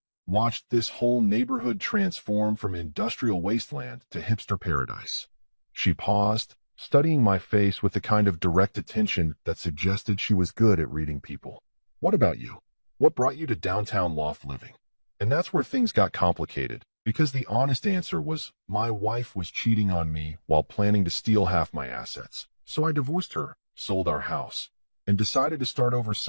Watched this whole neighborhood transform from industrial wasteland to hipster paradise." She paused, studying my face with the kind of direct attention that suggested she was good at reading people. "What about you? What brought you to downtown loft living?" And that's where things got complicated, because the honest answer was my wife was cheating on me while planning to steal half my assets. So I divorced her, sold our house, and decided to start over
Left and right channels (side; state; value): both; inverted; correlation -1.00